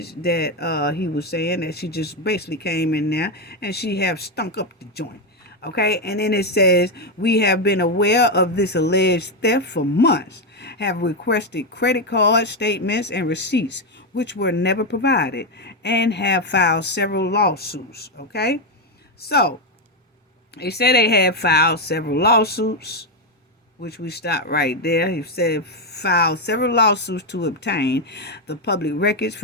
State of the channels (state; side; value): normal; both; correlation 0.05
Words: that he was saying that she just basically came in there and she have stunk up the joint. Okay, and then it says, we have been aware of this alleged theft for months, have requested credit card statements and receipts, which were never provided, and have filed several lawsuits. Okay, so they said they had filed several lawsuits, which we stopped right there. He said filed several lawsuits to obtain the public records